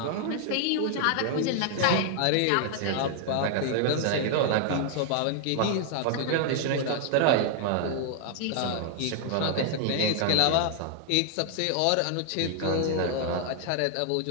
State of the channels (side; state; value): both; different; correlation 0.00